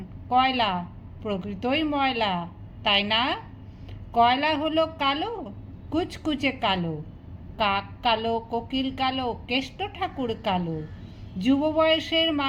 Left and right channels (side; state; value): both; identical; correlation 1.00